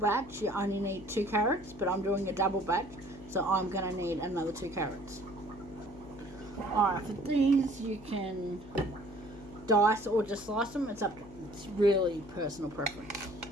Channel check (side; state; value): left; noise; hum, 19 dB below the sound